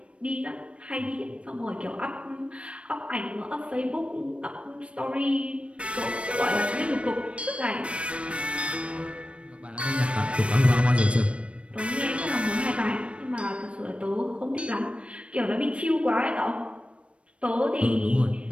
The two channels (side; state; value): left; late; 0.061 ms